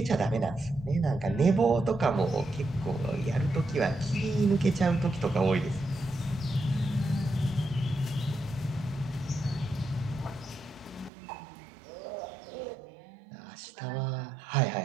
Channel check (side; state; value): left; drops out; at 11.1 s